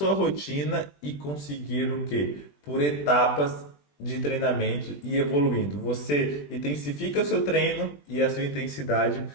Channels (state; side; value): late; right; 20 ms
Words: rotina e conseguir o quê? Por etapas de treinamento e evoluindo. Você intensifica o seu treino e a sua intensidade